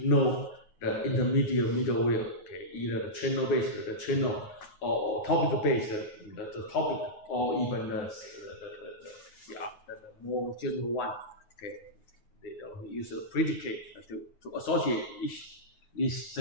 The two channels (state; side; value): late; right; 9.5 ms